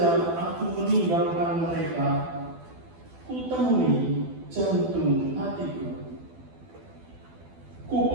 aku meninggalkan mereka, ku temui jantung hatiku. Ku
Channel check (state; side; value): late; left; 12 ms